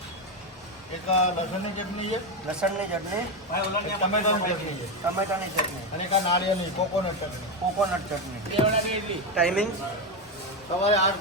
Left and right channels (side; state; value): both; normal; correlation 0.10